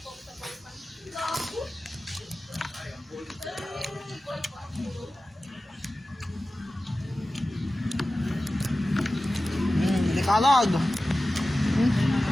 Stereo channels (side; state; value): both; normal; correlation 0.95